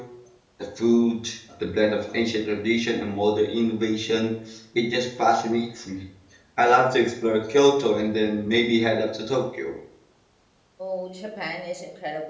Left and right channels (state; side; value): identical; both; correlation 1.00